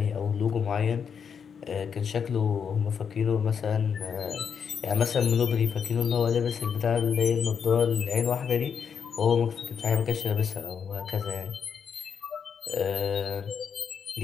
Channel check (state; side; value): quieter; right; 6.9 dB